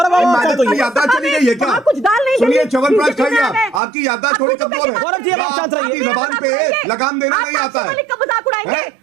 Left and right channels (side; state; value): left; drops out; at 3.8 s